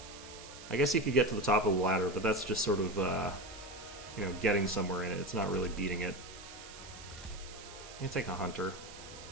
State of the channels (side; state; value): right; noise; hiss, 15 dB below the sound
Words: I guess you could get to the top of the ladder, but that's just sort of, you know, getting somewhere in it. It's not really beating it. I'm going to take a Hunter.